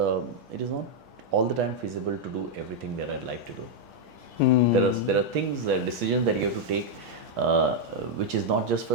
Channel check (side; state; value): both; normal; correlation -0.01